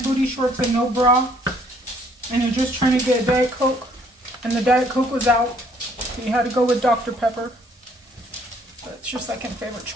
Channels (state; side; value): normal; both; correlation 0.63